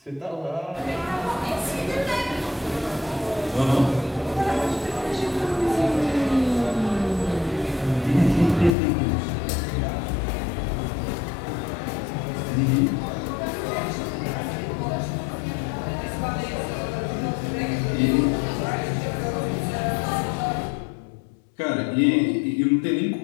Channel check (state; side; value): drops out; right; at 8.8 s